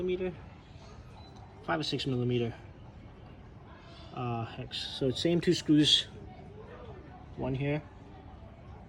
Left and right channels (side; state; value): both; identical; correlation 1.00